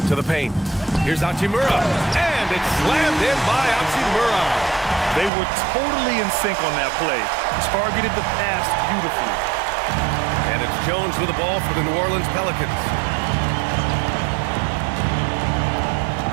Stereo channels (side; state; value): left; drops out; at 5.3 s